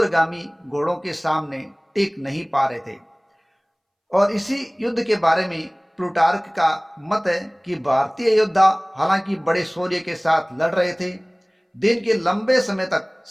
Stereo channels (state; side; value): identical; both; correlation 1.00